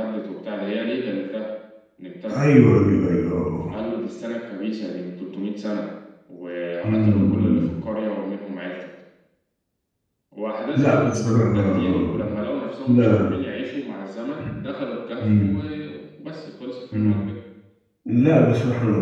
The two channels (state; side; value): identical; both; correlation 1.00